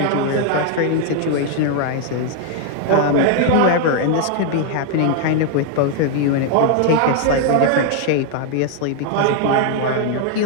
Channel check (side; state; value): both; different; correlation 0.00